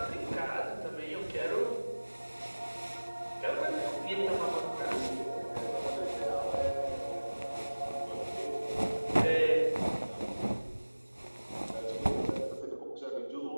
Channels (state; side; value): inverted; both; correlation -1.00